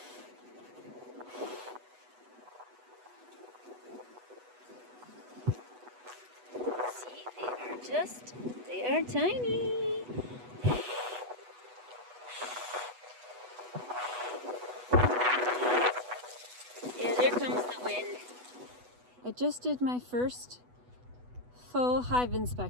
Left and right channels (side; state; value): left; late; 8.1 ms